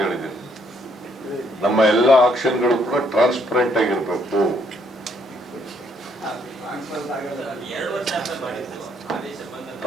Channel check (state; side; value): normal; both; correlation 0.69